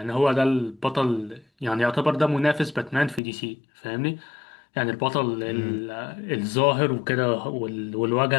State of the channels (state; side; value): drops out; right; at 3.2 s